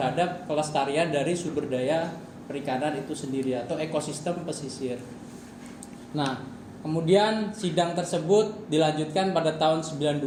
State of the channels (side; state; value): both; identical; correlation 1.00